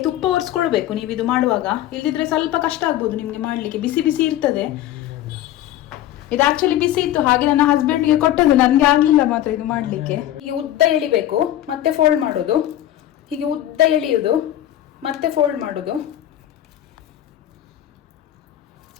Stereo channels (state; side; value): quieter; right; 12.8 dB